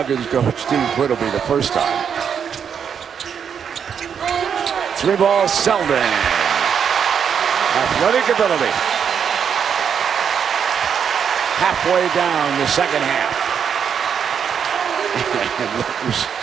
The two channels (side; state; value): left; quieter; 7.5 dB